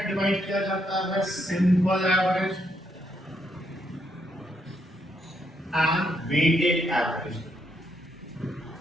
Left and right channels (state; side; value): normal; both; correlation 0.76